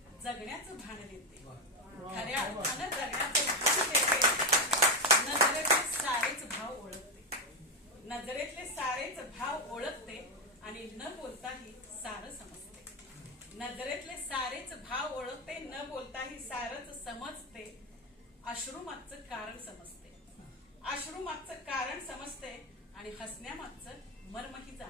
जगण्याचं भान देते, खऱ्या अर्थानं जगण्याचं भान देते. नजरेतले सारेच भाव ओळखते, नजरेतले सारेच भाव ओळखते आणि न बोलताही सारं समजते, नजरेतले सारेच भाव ओळखते, न बोलताही सारच समजते. अश्रूमागचं कारण समजते, अश्रूमागचं कारण समजते आणि हसण्यामागचं मर्मही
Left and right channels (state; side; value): normal; both; correlation 0.08